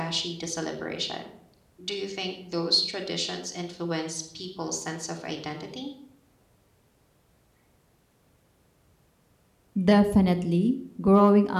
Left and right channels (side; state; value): both; identical; correlation 1.00